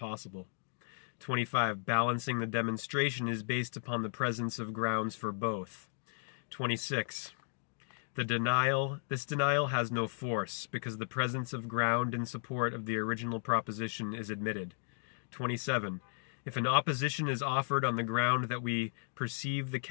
25. Balancing the demonstration is based upon the presence of grounds for both. 26. This denial has no force, because the presence of ground in support of the original proposition is admitted. 27. If an opposition is offered on the ground that we perceive the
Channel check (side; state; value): right; silent; digital silence